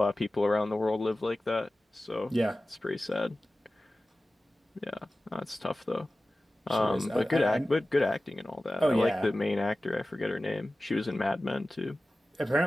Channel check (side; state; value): both; normal; correlation 0.96